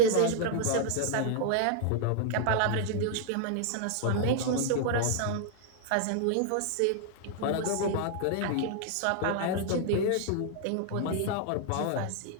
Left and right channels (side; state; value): both; different; correlation 0.00